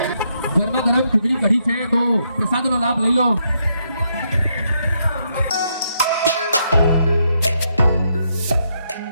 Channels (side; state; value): both; inverted; correlation -0.77